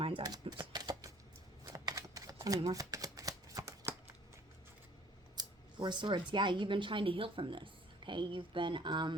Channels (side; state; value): both; normal; correlation 0.55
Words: eye. Oops. Tell me more. Four Swords. Yeah, you've been trying to heal from this. Okay, you've been,